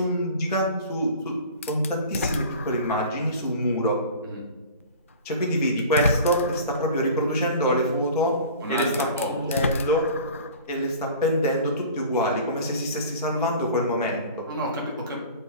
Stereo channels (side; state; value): both; inverted; correlation -0.41